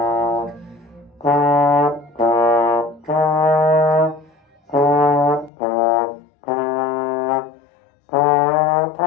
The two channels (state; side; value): drops out; right; at 5.5 s